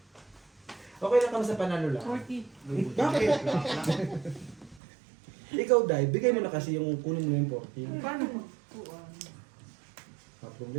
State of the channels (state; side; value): drops out; left; at 4.8 s